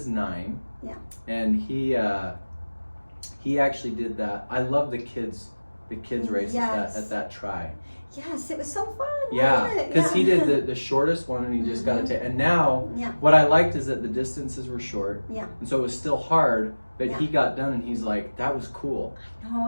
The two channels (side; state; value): both; inverted; correlation -1.00